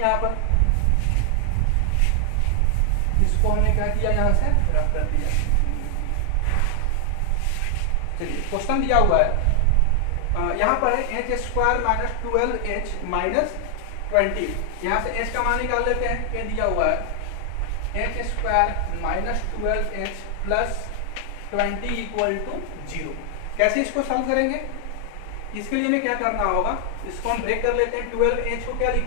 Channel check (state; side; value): different; both; correlation 0.00